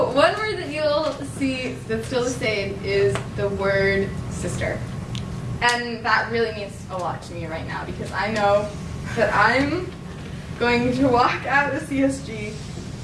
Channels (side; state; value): both; identical; correlation 1.00